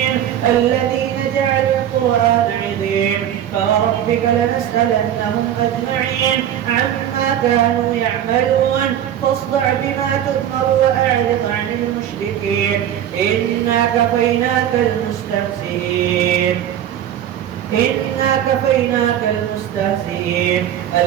الذين جعلوا القرآن عظيم فوربك لنسألنهم أجمعين عما كانوا يعملون فاصدع بما تؤمر وأعرض عن المشركين إنا كفيناك المستهزئين.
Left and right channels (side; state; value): left; quieter; 10.5 dB